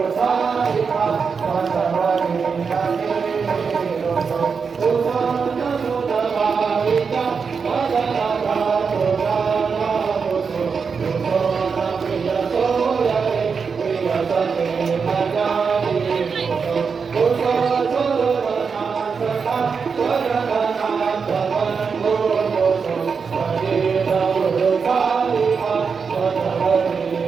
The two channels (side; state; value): left; quieter; 5.6 dB